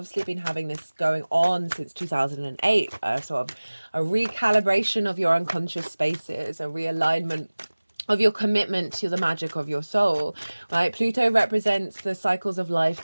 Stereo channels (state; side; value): inverted; both; correlation -1.00